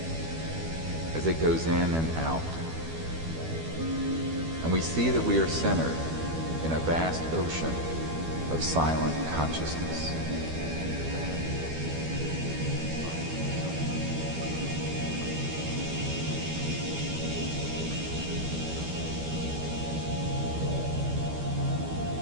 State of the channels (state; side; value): late; left; 12 ms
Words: as it goes in and out. And we see that we are centered in a vast ocean of silent consciousness.